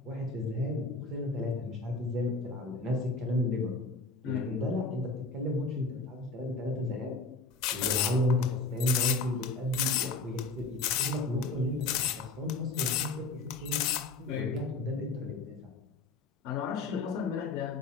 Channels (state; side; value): quieter; right; 3.5 dB